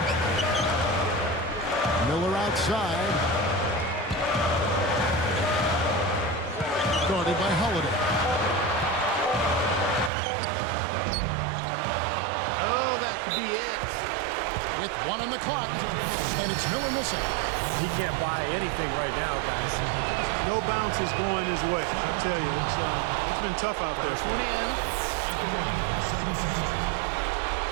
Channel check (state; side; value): drops out; left; at 10.1 s